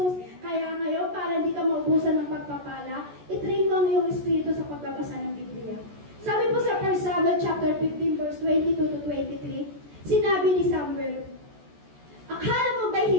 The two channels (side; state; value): left; late; 14 ms